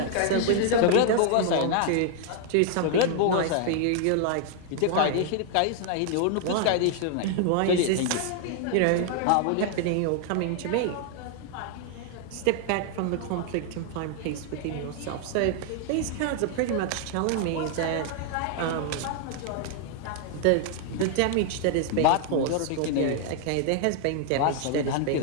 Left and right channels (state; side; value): different; both; correlation 0.00